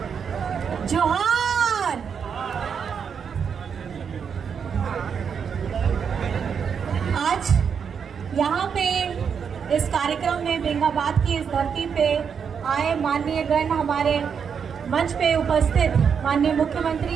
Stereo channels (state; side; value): quieter; left; 6.9 dB